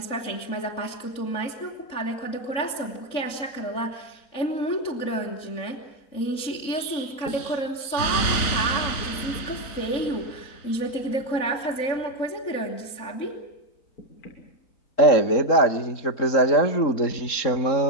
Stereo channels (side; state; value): right; late; 3.6 ms